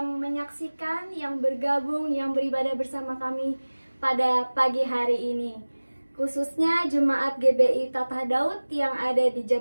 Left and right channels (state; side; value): inverted; both; correlation -1.00